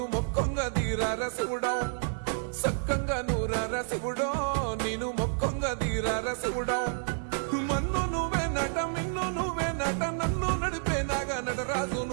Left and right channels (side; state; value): left; silent; digital silence